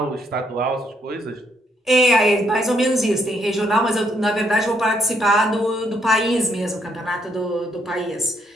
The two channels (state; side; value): normal; both; correlation 0.72